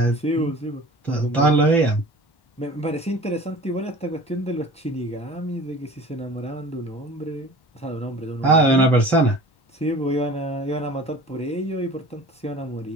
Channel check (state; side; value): late; right; 1.1 ms